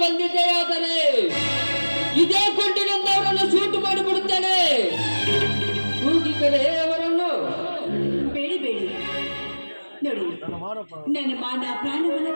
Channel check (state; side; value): inverted; both; correlation -1.00